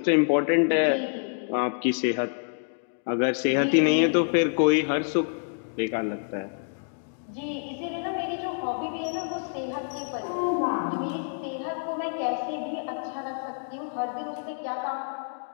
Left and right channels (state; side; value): silent; right; digital silence